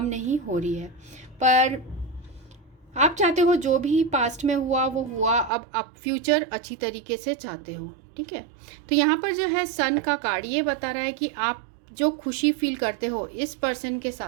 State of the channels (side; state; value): left; drops out; at 5.5 s